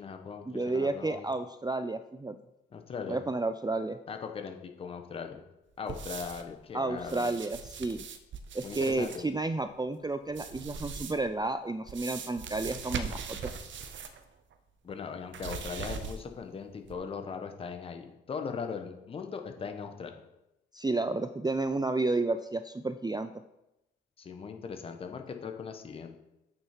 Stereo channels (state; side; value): normal; both; correlation 0.67